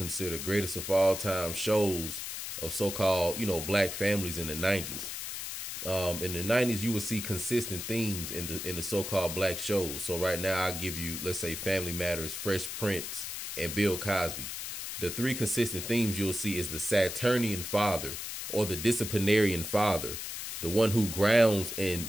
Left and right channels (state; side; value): noise; left; hiss, 6 dB below the sound